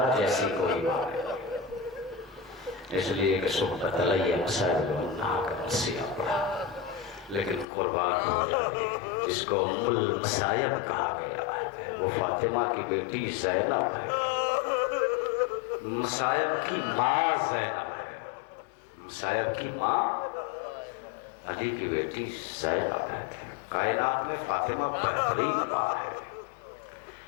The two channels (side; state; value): right; drops out; at 7.7 s